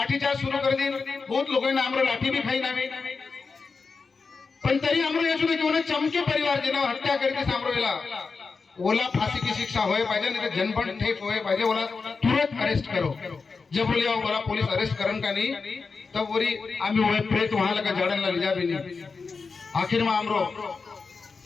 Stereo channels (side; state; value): right; quieter; 4.7 dB